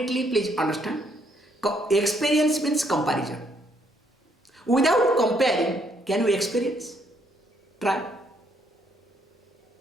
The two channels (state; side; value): normal; both; correlation 0.70